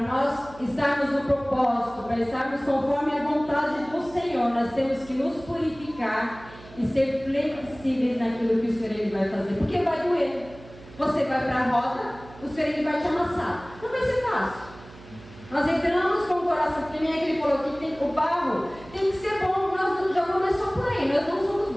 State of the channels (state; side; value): noise; right; hum, 20 dB below the sound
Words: nós estarmos no propósito, para estarmos conforme a vontade do Senhor, nós temos que nos purificar e ser flexíveis naquilo que o Senhor Ele vai fazer. Porque vai doer. Você vai para a roda, o Senhor Ele vai te amassar. Não vai ser fácil. Nós entramos com o coração, porque nem é que Ele falou que o barro tem que ser bom. Nós já começamos por aí, nós não somos